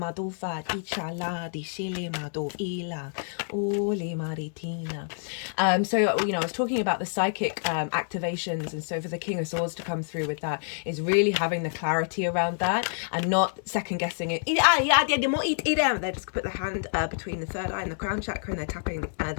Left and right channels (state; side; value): silent; right; digital silence